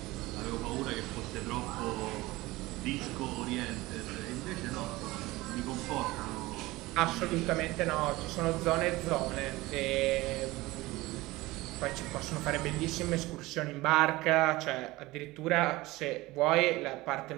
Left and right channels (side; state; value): left; quieter; 19.8 dB